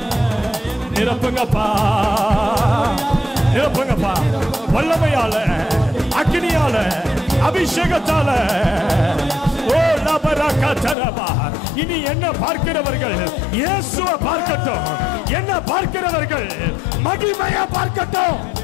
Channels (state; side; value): drops out; right; at 11.0 s